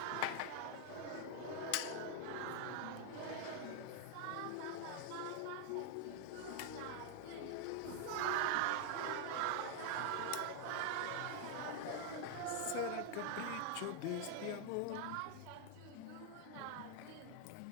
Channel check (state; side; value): different; both; correlation 0.00